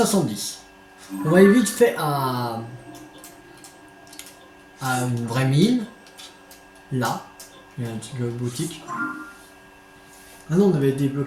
On va aller vite fait à une vraie mine. Là, il y a une petite boutique. Ah non, on avait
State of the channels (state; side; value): identical; both; correlation 1.00